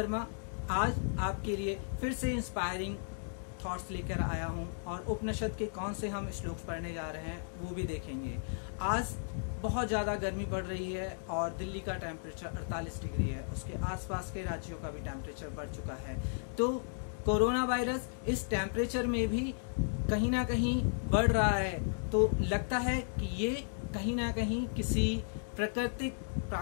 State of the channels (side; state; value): right; silent; digital silence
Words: आज आपके लिए फिर से इंस्पायरिंग थॉट्स लेकर आया हूं और उपनिषद के कौन से हम श्लोक पढ़ने जा रहे हैं वो भी देखेंगे। आज बहुत ज़्यादा गर्मी पड़ रही है और दिल्ली का टेम्परेचर 48 डिग्री है, उसके आसपास के राज्यों का भी टेम्परेचर बढ़ चुका है। तो कोरोना वायरस इस टेम्परेचर में भी कहीं ना कहीं बढ़ रहा है, तो लगता है कि ये कहीं ना कहीं किसी